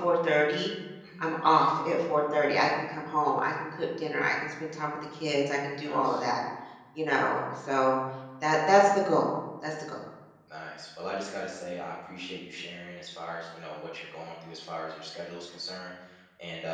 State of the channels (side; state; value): both; identical; correlation 1.00